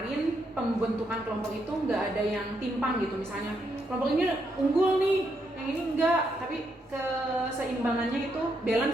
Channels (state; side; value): normal; both; correlation 0.78